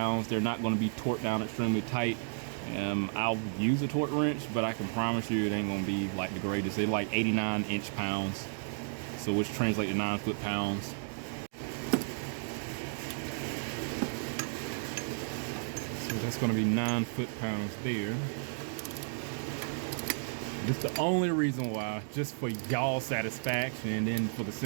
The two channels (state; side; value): silent; left; digital silence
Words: They're not going to be torqued down extremely tight. I'll use a torque wrench, but I can promise you it ain't going to be like the greatest. They're like 89 inch-pounds, so which translates to 9 foot-pounds. So that's going to be 9 foot-pounds there. This is the only reason why, just for y'all satisfaction, and then for the